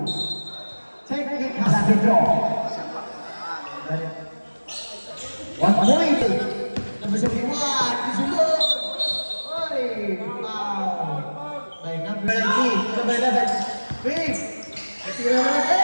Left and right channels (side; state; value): both; inverted; correlation -1.00